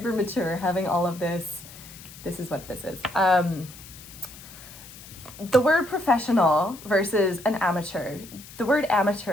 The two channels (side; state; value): left; noise; hiss, 17 dB below the sound